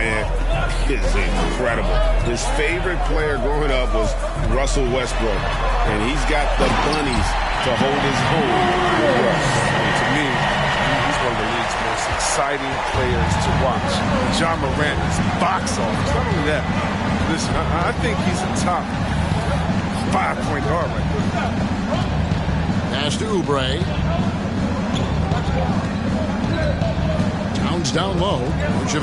is incredible. His favorite player growing up was Russell Westbrook. And he's got the bunnies to hold his own. And to me, he's one of the league's most exciting players to watch. John Morant is box office. Not only that, listen, I think he's a top 5-point guard right now. Pass to Oubre. Towns down low.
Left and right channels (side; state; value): both; identical; correlation 1.00